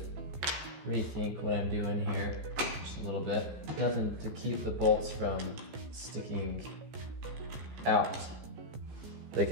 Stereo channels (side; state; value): left; late; 15 ms